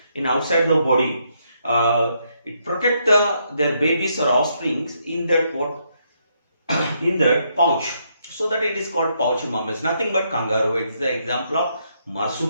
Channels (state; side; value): inverted; both; correlation -0.76